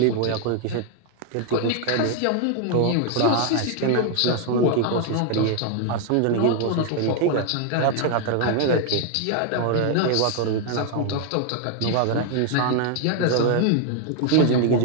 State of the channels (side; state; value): both; different; correlation 0.00